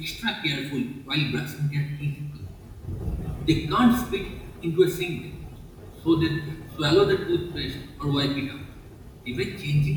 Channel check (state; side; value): identical; both; correlation 1.00